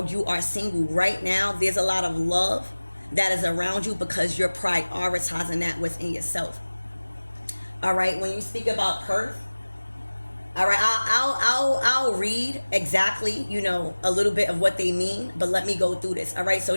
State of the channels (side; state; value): both; inverted; correlation -1.00